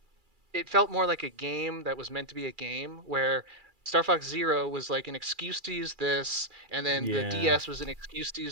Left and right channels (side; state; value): left; late; 2.4 ms